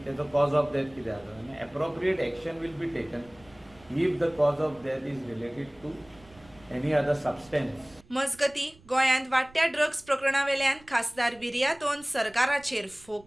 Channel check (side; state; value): right; noise; rumble, 26 dB below the sound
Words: तेजो कॉज ऑफ डेथ कितें आसा आनी appropriate action will be taken if the cause of death is related to any other substance. मजगती गोंयांत वाडट्या ड्रग्स प्रकरणा वेल्यान खासदार विर्यातोन सरकाराचेर